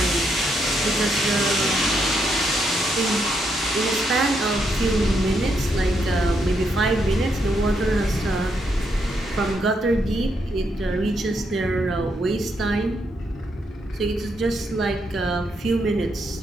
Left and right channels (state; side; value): normal; both; correlation 0.78